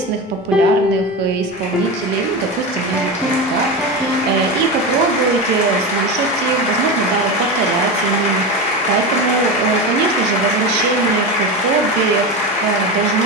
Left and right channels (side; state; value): both; normal; correlation 0.21